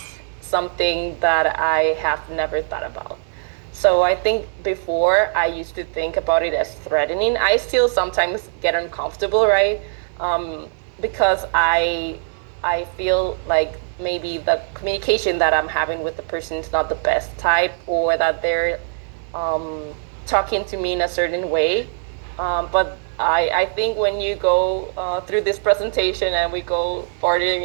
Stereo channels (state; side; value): silent; left; 65 dB below the other